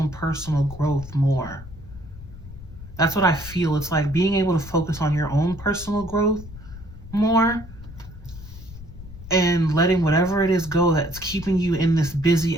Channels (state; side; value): noise; left; rumble, 15 dB below the sound